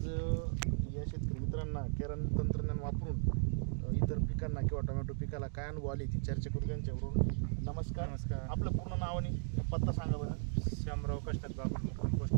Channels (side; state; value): left; silent; digital silence